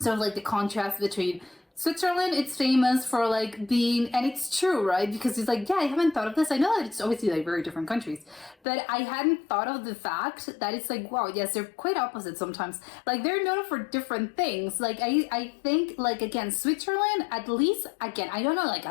of like the contrast between Switzerland. It's famous for like being, and it's true, right? Because it's like, yeah, I haven't thought of this. I know that it's obviously like very different countries, but I hadn't thought of the fact that it's like, wow, yes, they're quite opposite sometimes. Like, they're known for different things. Like, I think like, again, Switzerland, at least, again, I don't know like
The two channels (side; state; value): right; drops out; at 8.6 s